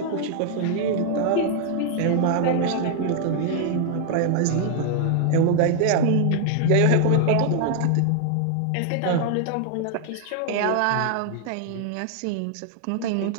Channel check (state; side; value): different; both; correlation 0.00